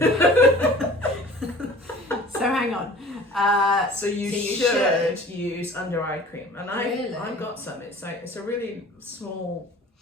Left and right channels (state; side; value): normal; both; correlation 0.46